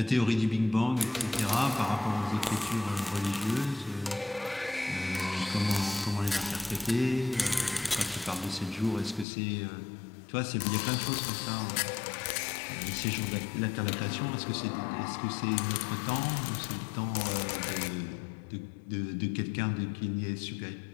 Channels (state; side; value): drops out; right; at 9.2 s